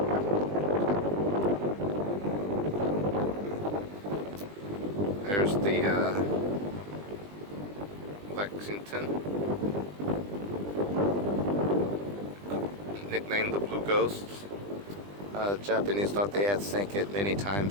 There's the Lexington, nicknamed the Blue Ghosts. Japanese thought they had sank it many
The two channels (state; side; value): late; left; 20 ms